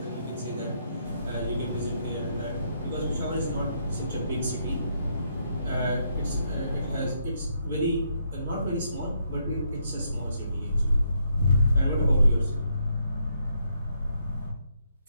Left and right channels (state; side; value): inverted; both; correlation -0.75